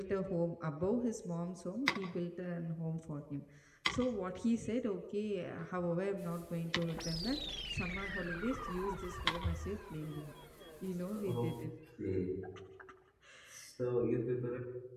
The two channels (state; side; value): identical; both; correlation 1.00